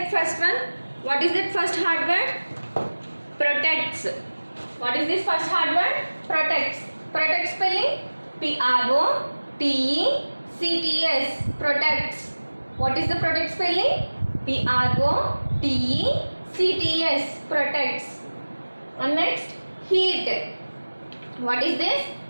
first one. What is that first hard word? Protects. What is this first hard word? Protects. Protect spelling Protects. Protects. What is the protect spelling? Protects. Protects. And next, heat. What is this?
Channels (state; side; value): inverted; both; correlation -1.00